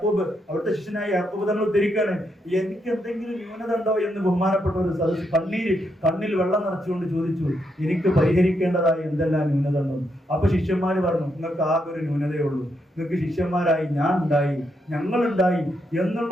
അവിടുത്തെ ശിഷ്യനായ യാക്കൂബ് തങ്ങൾ ഉദ്ധരിക്കാണ്, എനിക്ക് എന്തെങ്കിലും ന്യൂനത ഉണ്ടോ എന്ന് ബഹുമാനപ്പെട്ട ഒരു സദസ്സ് കണ്ണിൽ വെള്ളം നിറച്ചുകൊണ്ട് ചോദിച്ചു, എനിക്ക് പരിഹരിക്കേണ്ടതായ എന്തെല്ലാം ന്യൂനത ഉണ്ടോ. അപ്പൊ ശിഷ്യന്മാര് പറഞ്ഞു, നിങ്ങൾക്ക് ആകെ ഒരു ന്യൂനതയേ ഉള്ളൂ, നിങ്ങൾക്ക് ശിഷ്യന്മാരായി ഞാൻ ഉണ്ടായി, ഞങ്ങളുണ്ടായി എന്നുള്ള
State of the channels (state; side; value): normal; both; correlation 0.80